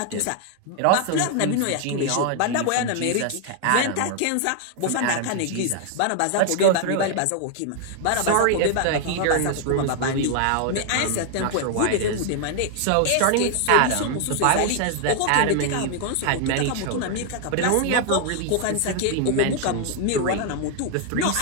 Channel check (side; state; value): both; different; correlation 0.00